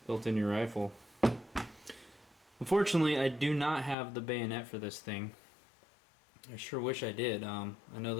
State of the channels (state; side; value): drops out; right; at 4.0 s